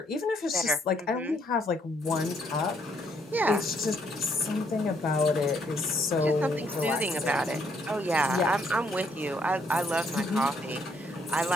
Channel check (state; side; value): normal; both; correlation 0.70